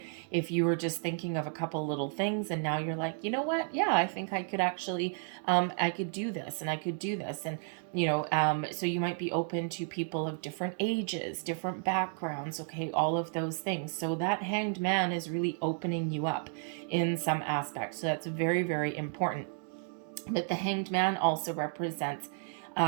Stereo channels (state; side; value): silent; left; 56 dB below the other